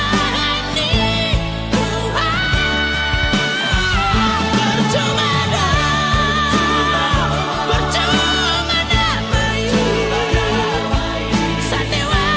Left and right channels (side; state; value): both; identical; correlation 1.00